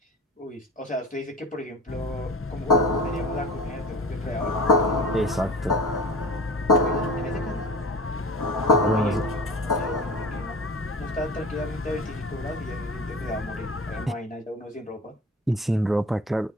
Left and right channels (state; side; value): normal; both; correlation 0.36